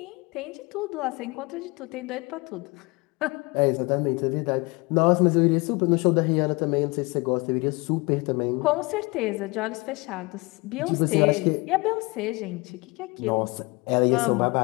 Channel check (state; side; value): quieter; right; 25.8 dB